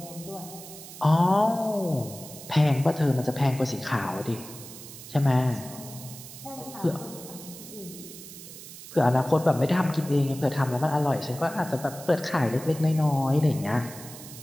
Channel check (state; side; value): noise; right; hiss, 15 dB below the sound